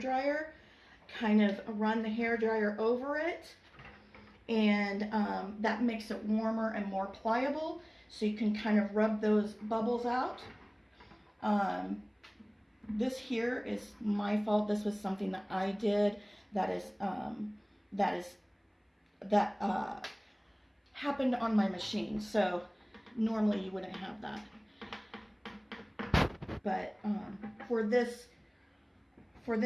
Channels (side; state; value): both; identical; correlation 1.00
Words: kind of run the hair dryer over it and that makes it warmer and more pliable, so you can kind of rub those bubbles out. This here is my fault. This was something that I did that happened on my machine, so normally you wouldn't have that. But for this